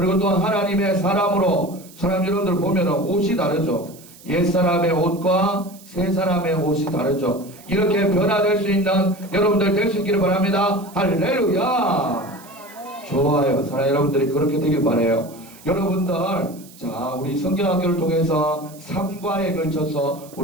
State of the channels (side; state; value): right; noise; hiss, 22 dB below the sound